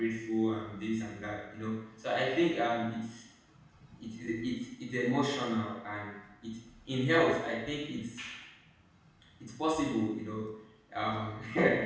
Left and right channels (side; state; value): both; identical; correlation 1.00